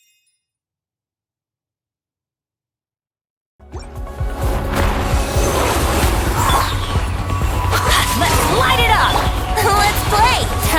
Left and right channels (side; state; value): both; identical; correlation 1.00